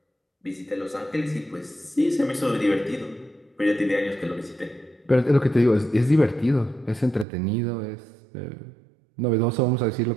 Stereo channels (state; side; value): drops out; left; at 7.2 s